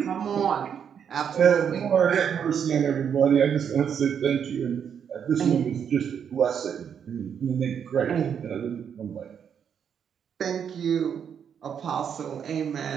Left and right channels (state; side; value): quieter; left; 7.9 dB